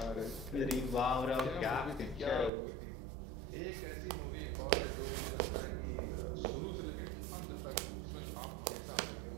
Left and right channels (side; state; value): left; drops out; at 2.5 s